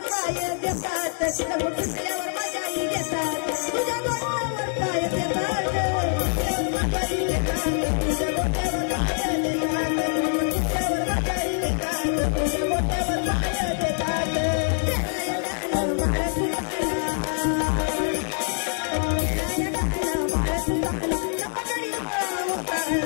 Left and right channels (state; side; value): silent; right; digital silence